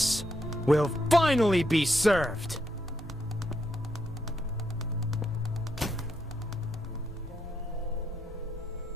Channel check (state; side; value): normal; both; correlation 0.78